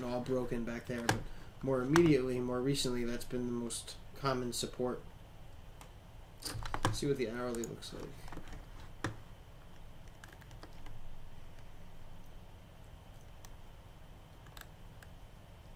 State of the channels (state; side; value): identical; both; correlation 1.00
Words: all broken back there, but more immediately, more recently, that's been the most common support. Let's see what the hourly looks like.